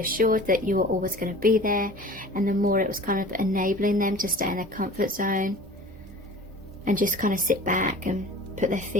that you were always going to be there, and the more it was kind of enabling them to stay in their comfort zone and just kind of sit back and put their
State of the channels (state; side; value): normal; both; correlation 0.42